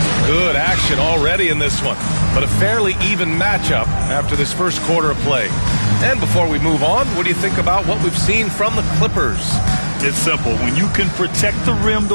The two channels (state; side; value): inverted; both; correlation -1.00